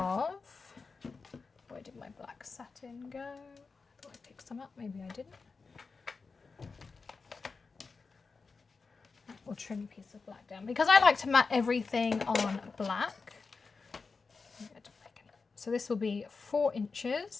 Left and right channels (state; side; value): quieter; right; 4.6 dB